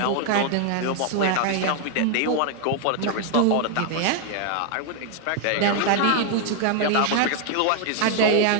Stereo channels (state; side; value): different; both; correlation 0.00